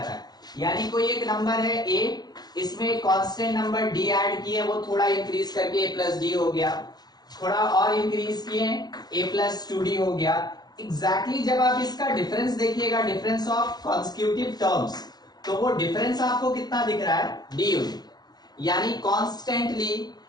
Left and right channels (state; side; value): late; right; 0.19 ms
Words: है। यानी कोई एक नंबर है ए, इसमें एक कांस्टेंट नंबर डी ऐड किए, वो थोड़ा इंक्रीज करके ए प्लस डी हो गया, थोड़ा और इंक्रीज किए ए प्लस टू डी हो गया। एग्जैक्टली जब आप इसका डिफरेंस देखिएगा, डिफरेंस ऑफ कॉन्सिक्यूटिव टर्म्स, तो वो डिफरेंस आपको कितना दिख रहा है, डी यूनिट। यानी कॉन्स्टेंटली